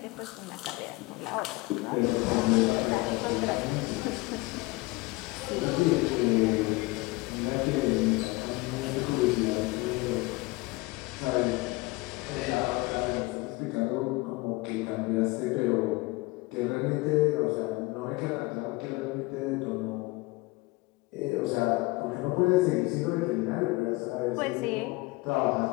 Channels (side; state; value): right; quieter; 22.7 dB